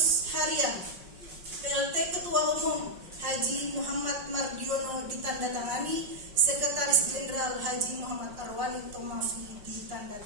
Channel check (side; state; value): left; late; 5.4 ms